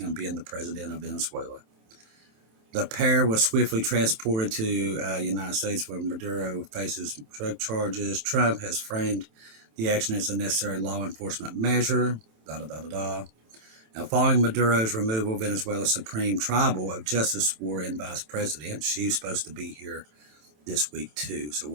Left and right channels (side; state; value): left; late; 27 ms